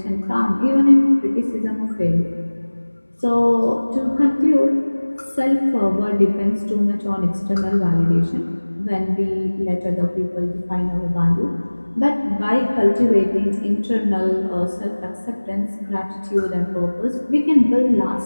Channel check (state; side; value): inverted; both; correlation -1.00